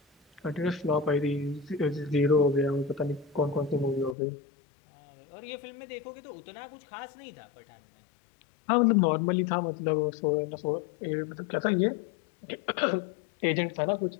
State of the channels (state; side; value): drops out; right; at 4.2 s